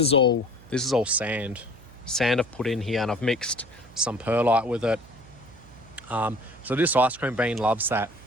all sand I've put in here, and I've mixed some perlite with it. So this ice cream bean loves that.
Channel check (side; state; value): right; noise; hum, 22 dB below the sound